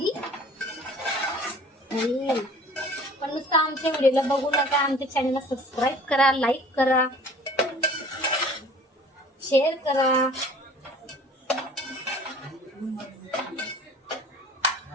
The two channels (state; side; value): normal; both; correlation 0.48